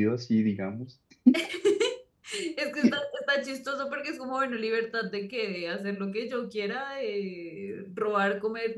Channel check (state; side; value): identical; both; correlation 1.00